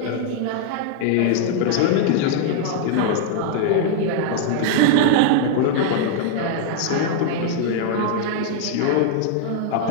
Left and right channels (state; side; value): different; both; correlation -0.01